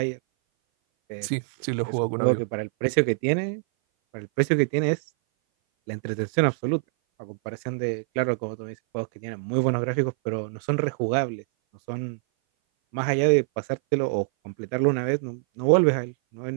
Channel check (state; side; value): silent; left; 58 dB below the other